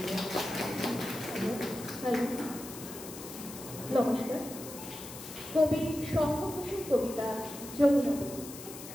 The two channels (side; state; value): left; noise; hiss, 12 dB below the sound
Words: নমস্কার। কবি শঙ্খঘোষের কবিতা Jamuna.